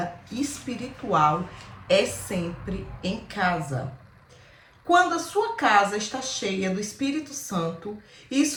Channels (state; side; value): identical; both; correlation 1.00